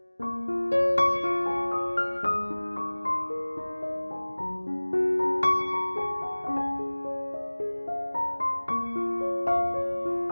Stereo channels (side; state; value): both; inverted; correlation -1.00